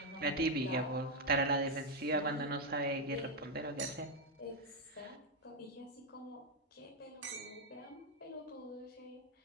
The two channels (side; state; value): both; normal; correlation 0.02